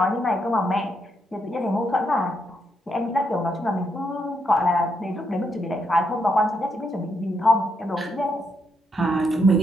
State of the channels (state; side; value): normal; both; correlation 0.79